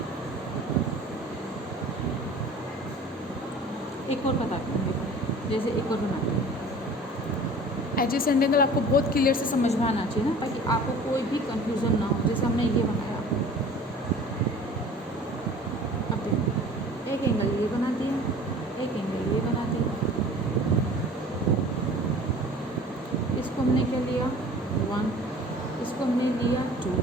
एक और बताते हैं, जैसे एक और बनाते हैं। एडजेसेंट एंगल आपको बहुत क्लियर से समझ में आना चाहिए ना, ताकि आपको कोई भी कंफ्यूजन ना हो। जैसे हमने ये बनाया, अब देखो एक एंगल ये बना दिया, एक एंगल ये बना दिया, इसको हमने क्या लिया 1, इसको हमने लिया 2,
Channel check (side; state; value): both; normal; correlation 0.45